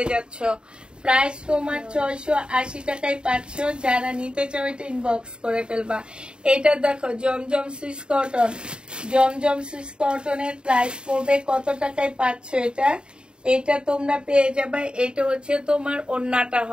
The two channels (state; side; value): late; left; 0.051 ms